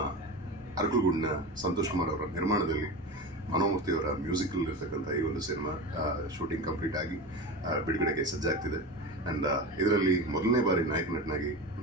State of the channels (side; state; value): both; normal; correlation 0.25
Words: ಅರಕಲಗೂಡಿನ ಸಂತೋಷ್ ಕುಮಾರ್ ಅವರ ನಿರ್ಮಾಣದಲ್ಲಿ, ಮನೋಮೂರ್ತಿ ಅವರ ಮ್ಯೂಸಿಕಲ್ ಇರ್ತಕ್ಕಂಥ ಈ ಒಂದು ಸಿನಿಮಾ ಶೂಟಿಂಗ್ ಕಂಪ್ಲೀಟ್ ಆಗಿ ಬಿಡುಗಡೆಗೆ ಸಜ್ಜಾಗ್ತಿದೆ. ಆ್ಯಂಡ್ ಇದರಲ್ಲಿ ಮೊದಲನೇ ಬಾರಿ ನಾಯಕ ನಟನಾಗಿ